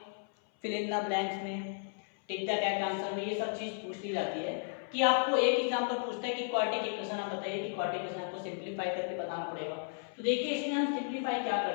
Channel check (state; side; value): silent; right; 55 dB below the other